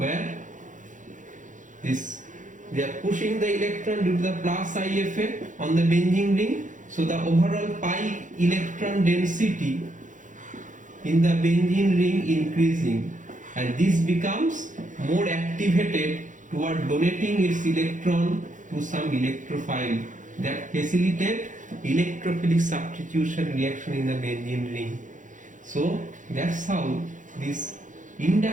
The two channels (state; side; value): late; left; 0.37 ms